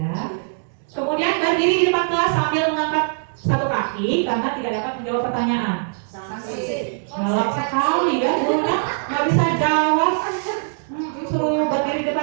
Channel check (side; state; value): left; silent; digital silence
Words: Kemudian berdiri di depan kelas sambil mengangkat satu kaki karena tidak dapat menjawab pertanyaan. Sanksi. Galak sekali ya, gurunya nggak bisa jawab. Suruh berdiri di